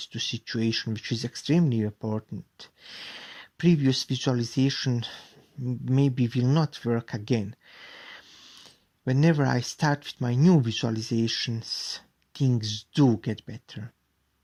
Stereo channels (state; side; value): identical; both; correlation 1.00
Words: to situation, which is extremely important, previous visualization maybe will not work again. Whenever I start with my new visualizations, things do get better.